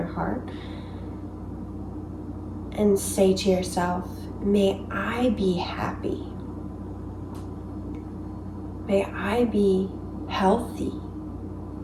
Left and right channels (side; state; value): both; identical; correlation 1.00